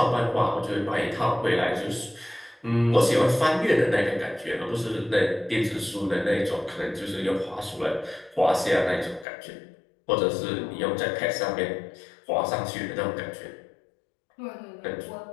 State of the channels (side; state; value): right; drops out; at 9.2 s